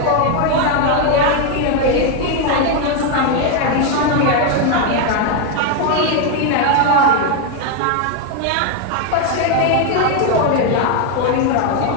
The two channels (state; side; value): different; both; correlation 0.01